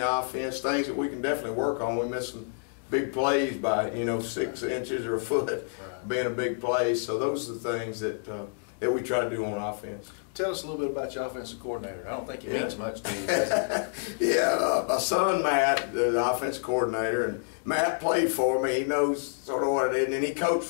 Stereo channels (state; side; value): silent; right; digital silence